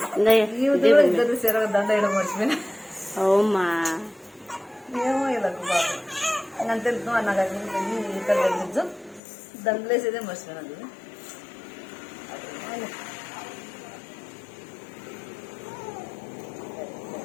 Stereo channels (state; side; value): drops out; right; at 9.2 s